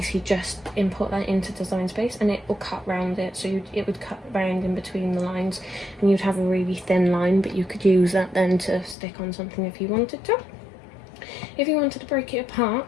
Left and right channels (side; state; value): right; drops out; at 9.0 s